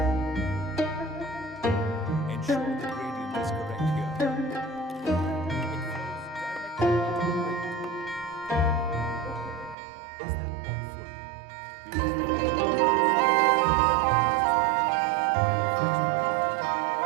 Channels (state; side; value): drops out; left; at 9.8 s